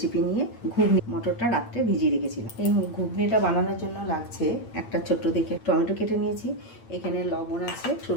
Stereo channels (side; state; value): right; late; 8.9 ms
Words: নিয়ে। ঘুগনি, মটরটা রাত্রে ভিজিয়ে রেখেছিলাম। এই ঘুগনিটা বানানোর জন্য লাগছে একটা ছোট্ট দেখে টমেটো কেটে নিয়েছি, এখানে লবণ আছে,